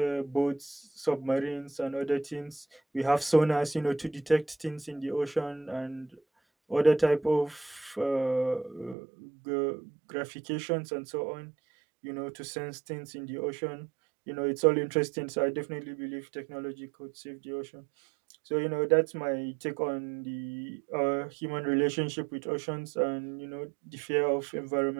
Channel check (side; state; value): left; drops out; at 9.0 s